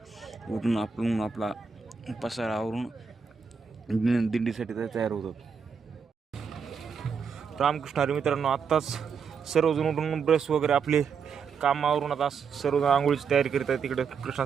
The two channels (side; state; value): left; quieter; 6.0 dB